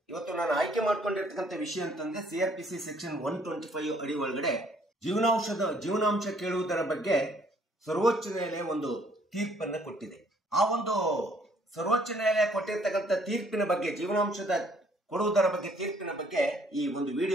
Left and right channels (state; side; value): normal; both; correlation 0.63